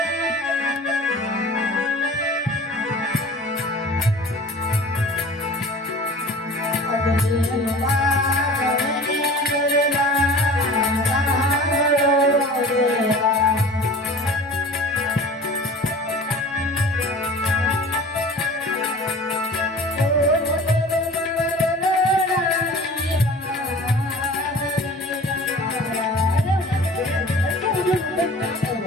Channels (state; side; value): normal; both; correlation 0.42